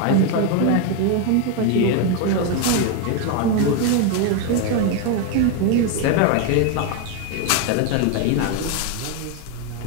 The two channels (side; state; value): both; different; correlation 0.01